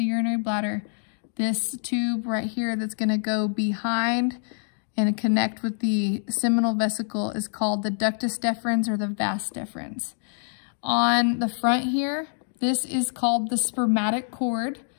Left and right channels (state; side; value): silent; right; digital silence